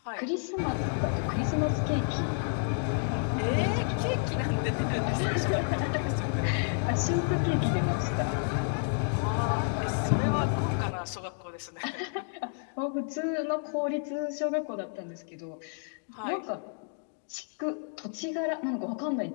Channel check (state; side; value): silent; right; 58 dB below the other